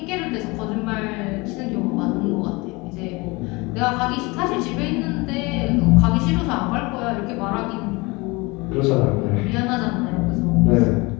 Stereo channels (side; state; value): right; quieter; 25.0 dB